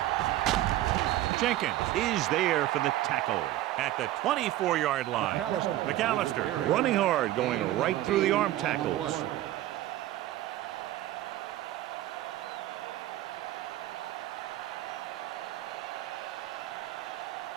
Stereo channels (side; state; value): left; quieter; 14.7 dB